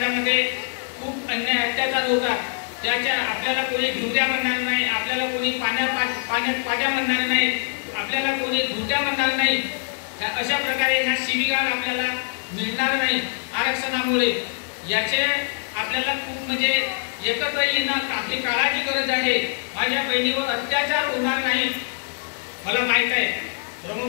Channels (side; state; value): right; silent; 59 dB below the other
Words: खूप अन्याय अत्याचार होतात, त्याच्या आपल्याला कोणी घुट्या म्हणणार नाही, आपल्याला कोणी पाण्यात पाट्या म्हणणार नाही, आपल्याला कोणी घुट्या म्हणणार नाही. अशा प्रकारे ह्या शिवीगाळ आपल्याला मिळणार नाही आरक्षणामुळे. याचे आपल्याला खूप म्हणजे एकत्र येणं आपली काळाची गरज आहे. माझ्या बहिणीवर अत्याचार होणार नाही. मला माहित आहे